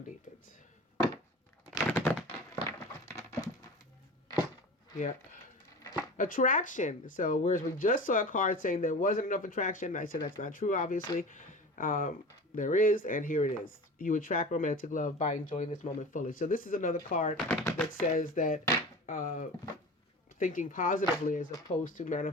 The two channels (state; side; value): normal; both; correlation 0.34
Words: deepens. Yep. Attraction. So whereas we just saw a card saying there wasn't enough attraction, I said that's not true, obviously. There is, and here it is. You attract romantic love by enjoying this moment fully. So this is another card that says that thinking positively as opposed to